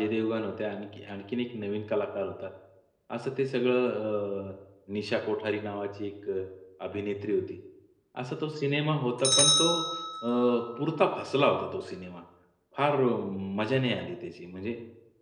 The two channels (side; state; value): both; identical; correlation 1.00